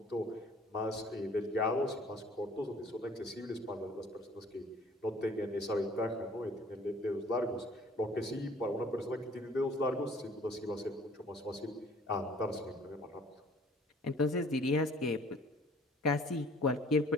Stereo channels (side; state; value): both; normal; correlation 0.54